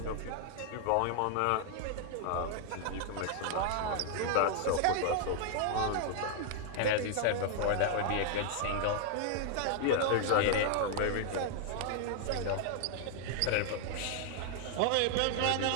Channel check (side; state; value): both; different; correlation 0.00